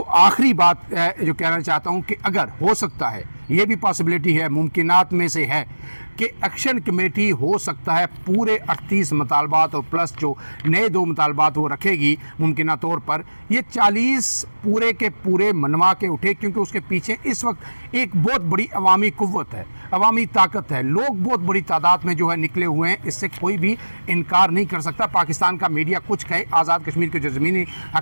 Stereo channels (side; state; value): both; inverted; correlation -1.00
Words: आखिरी बात जो कहना चाहता हूँ कि अगर हो सकता है, ये भी पॉसिबिलिटी है, मुमकिनात में से है कि एक्शन कमेटी हो सकता है पूरे 38 मुतालबात और प्लस जो नए 2 मुतालबात वो रखेगी मुमकिना तौर पर, ये 40 पूरे के पूरे मनवा के उठे, क्योंकि उसके पीछे इस वक्त एक बहुत बड़ी अवामी कुव्वत है, अवामी ताकत है, लोग बहुत बड़ी तादाद में जो है निकले हुए हैं, इससे कोई भी इनकार नहीं कर सकता। पाकिस्तान का मीडिया कुछ कहे, आज़ाद कश्मीर के जो ज़मीनी